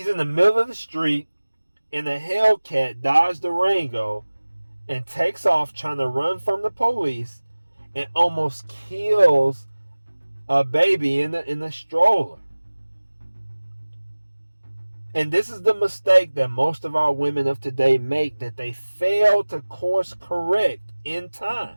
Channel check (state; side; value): inverted; both; correlation -1.00